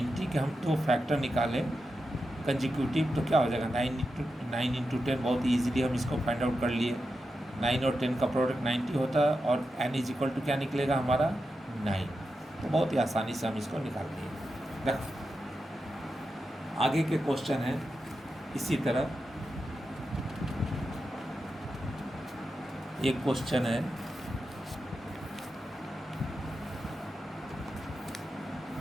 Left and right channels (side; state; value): both; normal; correlation 0.89